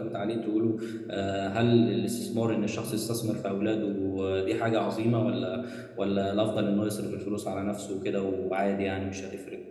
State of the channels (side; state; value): both; identical; correlation 1.00